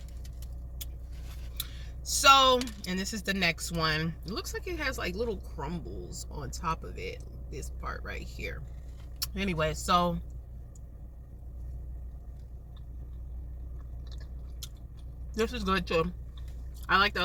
So, and this is the next one. It looks like it has like little crumbles on top of it. This part right here. Anyway, so this is good too. I like the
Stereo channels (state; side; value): identical; both; correlation 1.00